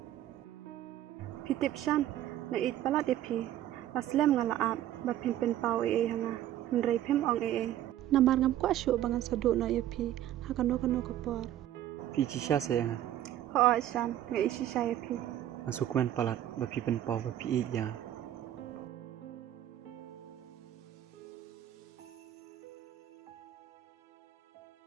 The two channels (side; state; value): left; quieter; 12.3 dB